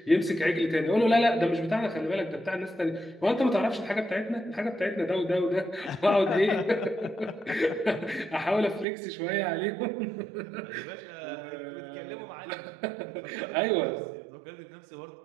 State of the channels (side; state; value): left; drops out; at 8.8 s